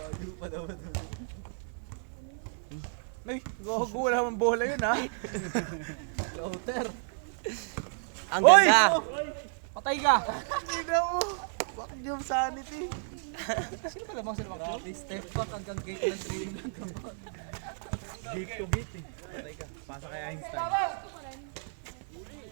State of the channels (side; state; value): left; silent; 57 dB below the other